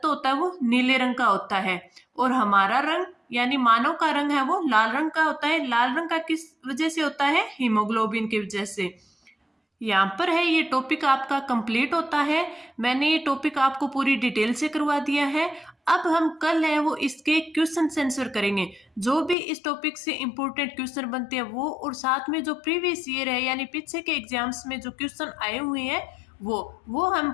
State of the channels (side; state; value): right; drops out; at 19.4 s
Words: होता है वो नीले रंग का होता है, और हमारा रंग यानी मानव का रंग है वो लाल रंग का होता है। लाल रंग का किस वजह से होता है? हीमोग्लोबिन की वजह से। यहाँ पर है ये टॉपिक आपका कंप्लीट होता है। मैंने ये टॉपिक आपको पूरी डिटेल से करवा दिया है। अब हम कल है वो इसके क्वेश्चन आंसर करेंगे, जो भी इस टॉपिक से इंपॉर्टेंट क्वेश्चन बनते हैं वो, और साथ में जो प्रीवियस ईयर है यानी पीछे के एग्जाम्स में जो क्वेश्चन आए हुए हैं वो हम